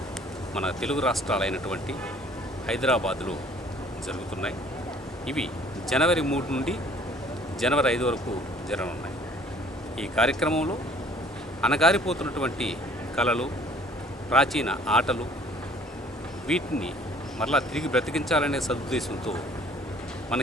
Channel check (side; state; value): both; normal; correlation 0.55